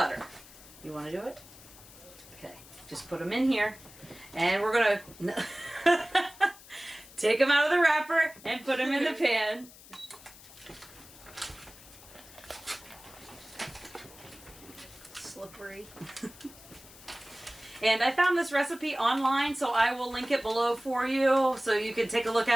You want to do it? Okay. Just put them in here. And we're going to take them out of the wrapper and put them in the pan. Slippery. And I found this recipe online, so I will link it below for you so you can take a look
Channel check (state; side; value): noise; left; hiss, 20 dB below the sound